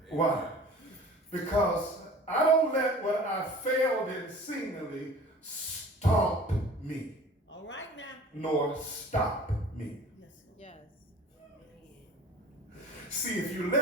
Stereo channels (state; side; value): normal; both; correlation 0.44